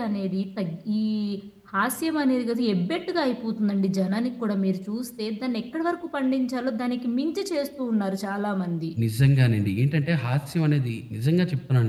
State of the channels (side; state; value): both; identical; correlation 1.00